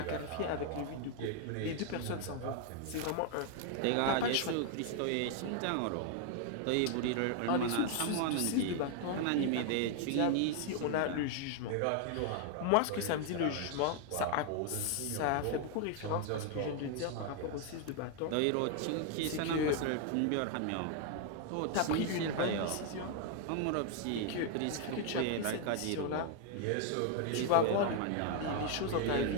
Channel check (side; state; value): both; different; correlation 0.00